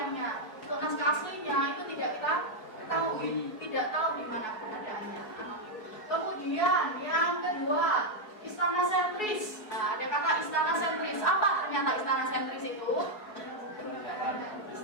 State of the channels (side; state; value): right; late; 4.7 ms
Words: Untuk naskah aslinya itu tidak kita tahu, tidak tahu di mana keberadaannya. Kemudian yang kedua, istana sentris. Nah, ada kata istana sentris. Apa ternyata istana sentris itu?